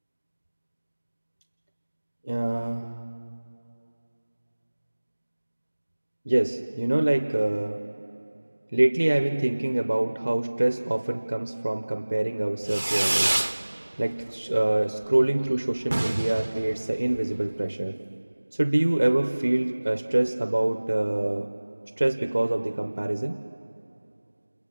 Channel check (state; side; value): inverted; both; correlation -1.00